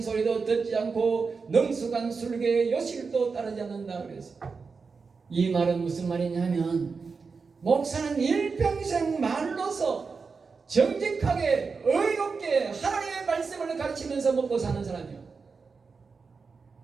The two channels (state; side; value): quieter; left; 4.9 dB